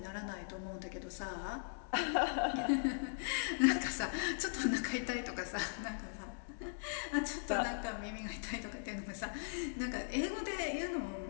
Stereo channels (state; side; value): silent; right; digital silence